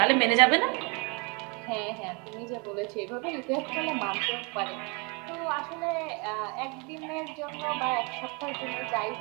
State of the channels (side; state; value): left; quieter; 31.2 dB